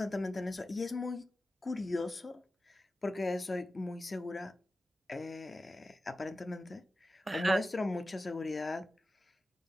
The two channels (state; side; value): normal; both; correlation 0.94